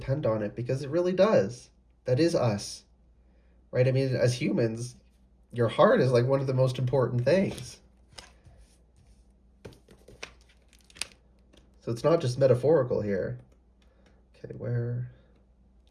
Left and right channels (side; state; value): both; identical; correlation 1.00